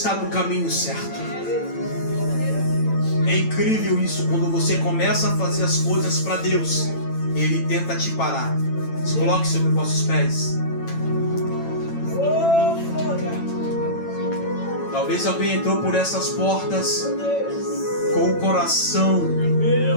no caminho certo. É incrível isso, quando você começa a fazer as coisas para Deus, ele tenta te parar. Se coloque sobre os vossos pés. Talvez alguém entrou por essas portas com o coração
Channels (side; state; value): right; late; 9.0 ms